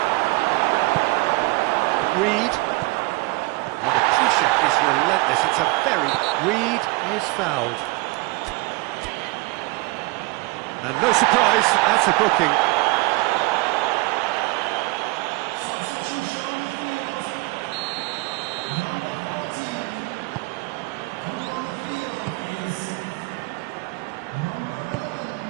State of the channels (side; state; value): left; quieter; 24.6 dB